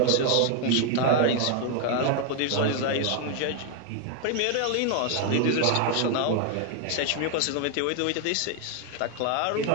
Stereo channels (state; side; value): different; both; correlation 0.00